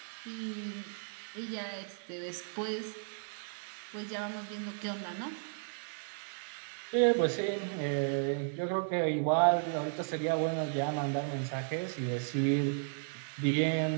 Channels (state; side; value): silent; left; digital silence